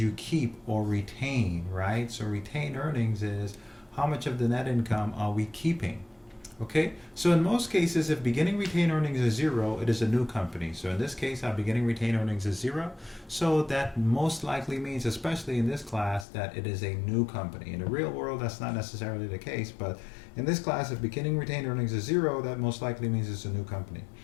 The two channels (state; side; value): drops out; right; at 16.2 s